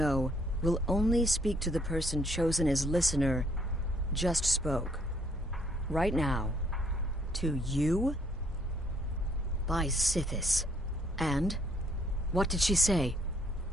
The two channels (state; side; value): normal; both; correlation 0.67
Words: will only speak to the person chosen as listener, just spoke. Right now. To you? By Sithis. And? What did she say?